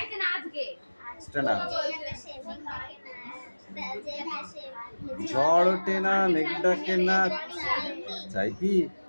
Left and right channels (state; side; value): inverted; both; correlation -1.00